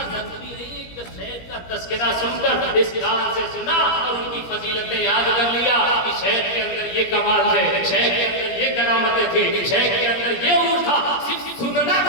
ضروری نہیں کہ شیخ کا تذکرہ سن کر اس کام سے سنا اور ان کی فضیلتیں یاد کر لیا کہ شیخ کے اندر یہ کمال ہے، شیخ کے اندر یہ کرامتیں تھیں، شیخ کے اندر یہ عمر تھا. صرف سننا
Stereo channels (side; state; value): right; late; 17 ms